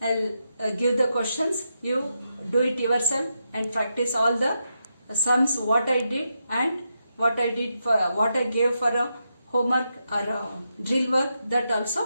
I'll give the questions. You do it yourself and practice all the sums what I did and what I did for what I gave for a homework or drill work, that also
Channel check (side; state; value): both; inverted; correlation -0.85